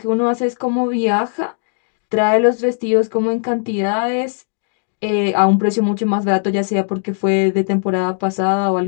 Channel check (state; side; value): silent; right; digital silence